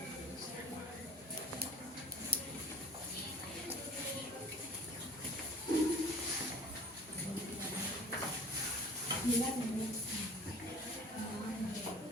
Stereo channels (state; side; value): normal; both; correlation 0.46